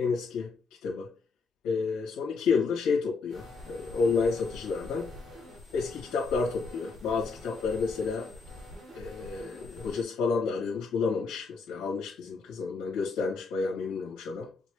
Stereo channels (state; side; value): quieter; right; 4.5 dB